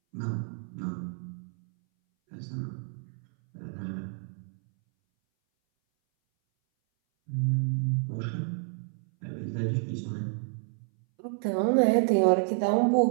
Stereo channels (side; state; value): left; silent; 58 dB below the other